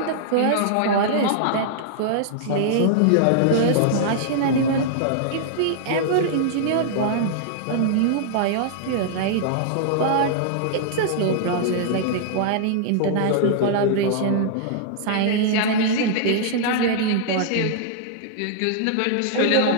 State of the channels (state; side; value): different; both; correlation -0.01